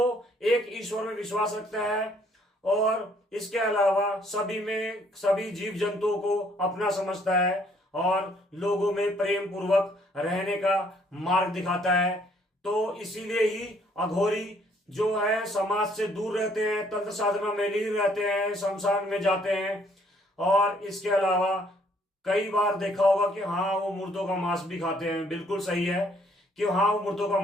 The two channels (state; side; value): normal; both; correlation 0.65